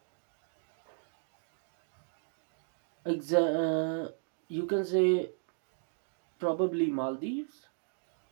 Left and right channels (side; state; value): left; silent; digital silence